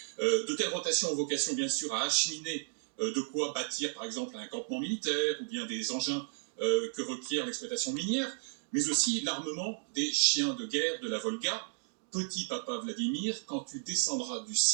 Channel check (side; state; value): left; silent; digital silence